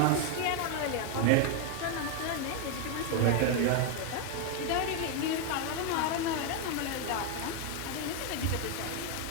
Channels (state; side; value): different; both; correlation 0.01